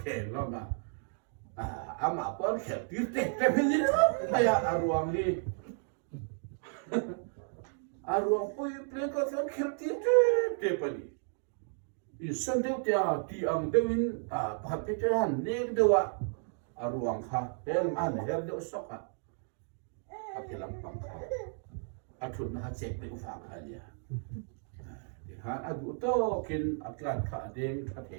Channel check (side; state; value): left; silent; 56 dB below the other